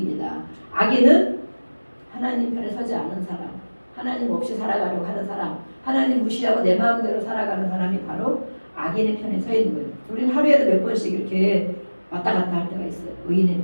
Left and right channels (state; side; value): inverted; both; correlation -1.00